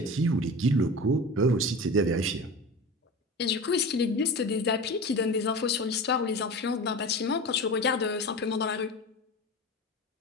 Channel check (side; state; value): both; normal; correlation 0.31